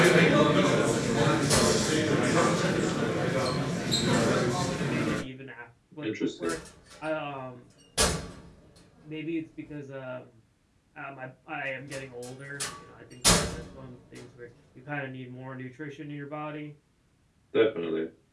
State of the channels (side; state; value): both; identical; correlation 1.00